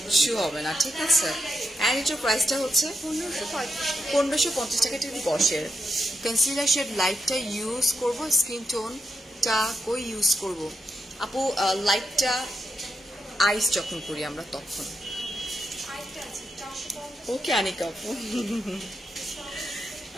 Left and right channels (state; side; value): normal; both; correlation 0.84